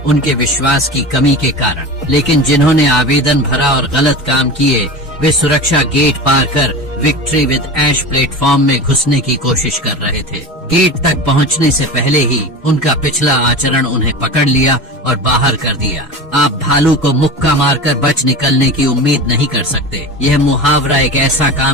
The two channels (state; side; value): normal; both; correlation 0.30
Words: उनके विश्वास की कमी के कारण। लेकिन जिन्होंने आवेदन भरा और गलत काम किए, वे सुरक्षा गेट पार कर विक्ट्री विद ऐश प्लेटफॉर्म में घुसने की कोशिश कर रहे थे। गेट तक पहुंचने से पहले ही उनका पिछला आचरण उन्हें पकड़ लिया और बाहर कर दिया। आप भालू को मुक्का मारकर बच निकलने की उम्मीद नहीं कर सकते। यह मुहावरा एक ऐसा